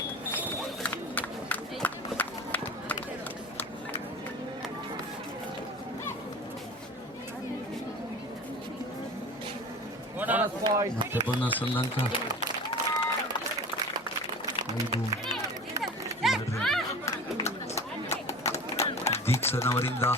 ಮತ್ತೆ ಬೋನಸ್ ಒಂದು ಅಂಕ 5-2. ದೀಕ್ಷನವರಿಂದ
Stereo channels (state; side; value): noise; right; hum, 30 dB below the sound